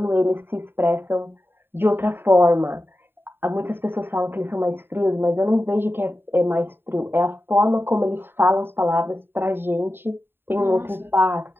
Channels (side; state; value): left; late; 0.11 ms